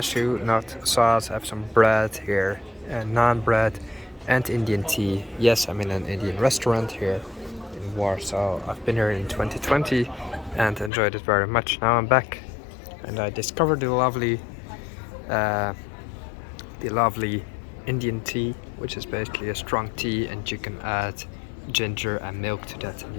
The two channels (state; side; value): drops out; right; at 10.9 s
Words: nut sauce. I have some bread here, naan bread, and Indian tea. Yes, I'm in an Indian restaurant here in Warsaw. I've been here in 2020 and enjoyed it very much. Now I'm back, and I discovered uh, the lovely Indian tea, which is basically a strong tea, and you can add ginger and milk to that, and